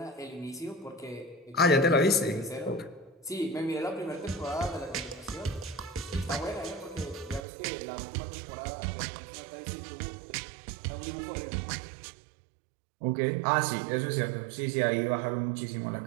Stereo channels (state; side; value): drops out; left; at 7.4 s